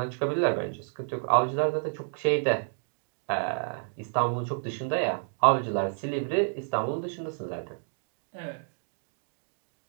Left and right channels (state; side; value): silent; left; digital silence